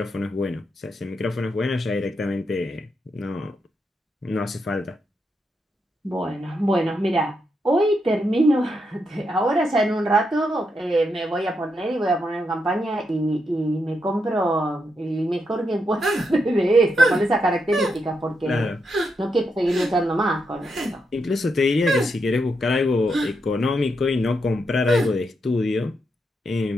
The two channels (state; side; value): normal; both; correlation 0.82